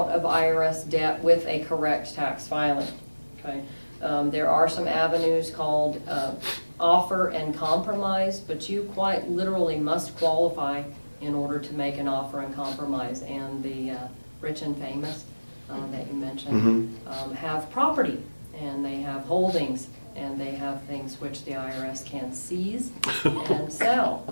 of IRS debt with a correct tax filing. Okay? There are some avenues called offer and compromise, but you quite literally must qualify in order to make an offer and compromise. And the rich and famous that you mentioned have property, and they have holdings, and they have things which the IRS can seize and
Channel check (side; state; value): both; inverted; correlation -1.00